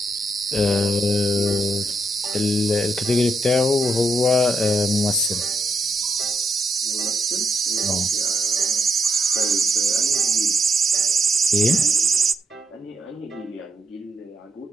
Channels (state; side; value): normal; both; correlation 0.78